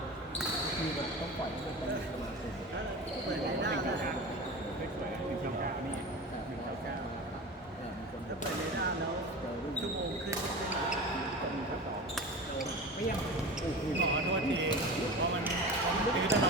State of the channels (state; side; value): normal; both; correlation 0.31